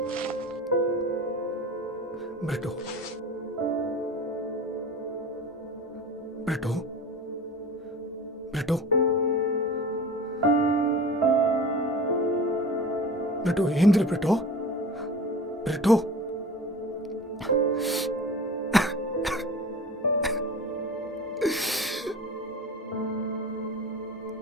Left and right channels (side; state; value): both; normal; correlation 0.36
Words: Brito. Brito. Brito. Britto ஏந்திரு Britto. Britto